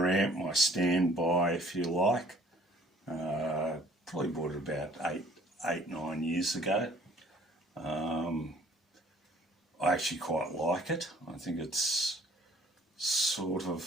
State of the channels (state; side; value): normal; both; correlation 0.56